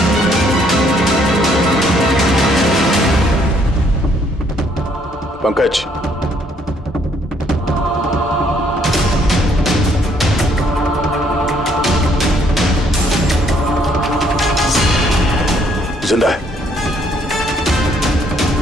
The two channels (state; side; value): normal; both; correlation 0.67